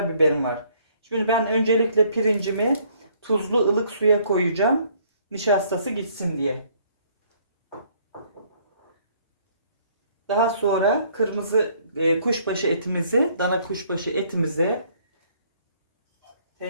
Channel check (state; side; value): inverted; both; correlation -0.63